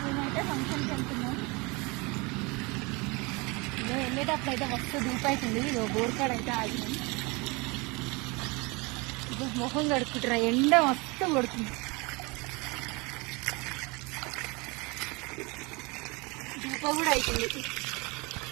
మేమైతే ఫంక్షన్కి వెళ్తున్నాం. ఇదో వెళ్ళేటప్పుడు అయితే మస్తు ధూపు అవుతుంది. ఇదో బోర్కాడ అయితే ఆగినాం. ఇదో మొహం కడుక్కుంటారా, ఎండ మస్తు కొడుతుంది. ధూప కూడా అవుతుంది.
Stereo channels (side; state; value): left; quieter; 27.1 dB